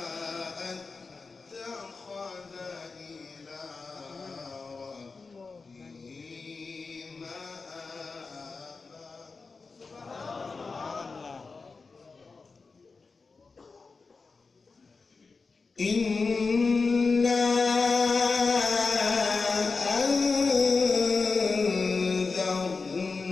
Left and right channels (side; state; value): right; quieter; 4.4 dB